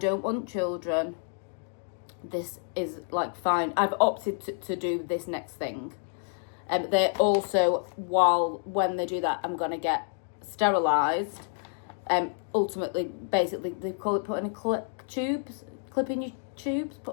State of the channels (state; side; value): silent; right; 55 dB below the other